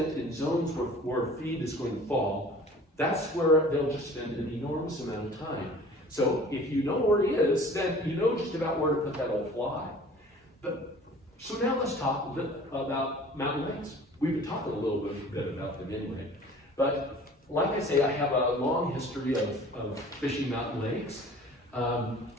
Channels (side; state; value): both; normal; correlation 0.47